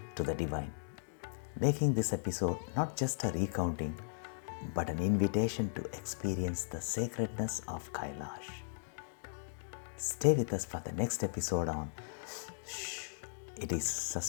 to the divine, making this episode not just a recounting, but an invitation to experience the sacredness of Kailash. Stay with us for the next episode on Shh, It is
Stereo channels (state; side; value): silent; right; digital silence